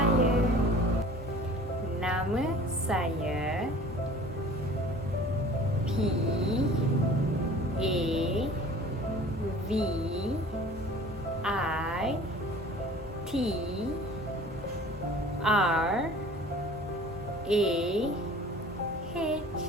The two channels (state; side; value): normal; both; correlation 0.46